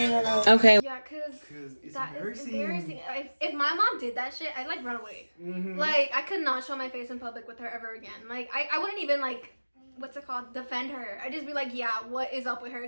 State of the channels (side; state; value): both; inverted; correlation -1.00